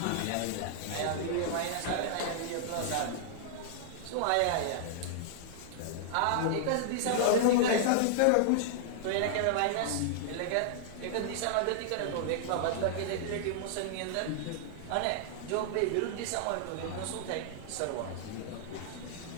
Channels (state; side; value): different; both; correlation -0.01